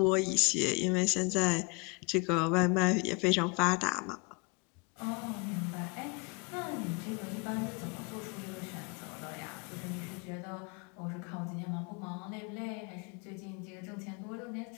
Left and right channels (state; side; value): quieter; right; 30.0 dB